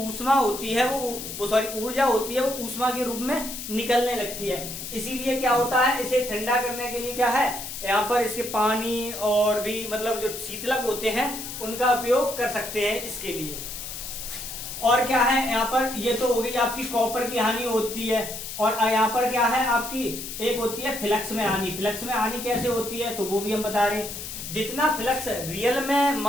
होती है वो सॉरी ऊर्जा होती है वो ऊष्मा के रूप में निकलने लगती है। इसीलिए क्या होता है, इसे ठंडा करने के लिए क्या है, यहाँ पर इसके पानी और भी मतलब जो शीतलक होते हैं उनका उपयोग कर सकते हैं इसके लिए। और क्या है यहाँ पर, ये तो हो गई आपकी कॉपर की हानि होती है। और यहाँ पर क्या है आपकी, एक होती है फ्लक्स में हानि। फ्लक्स में हानि कैसे होती है तो वो भी हम बता रहे हैं। जितना फ्लक्स रियल में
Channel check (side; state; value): left; noise; hiss, 8 dB below the sound